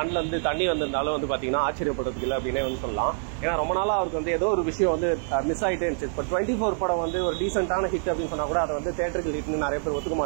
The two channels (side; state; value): left; silent; 57 dB below the other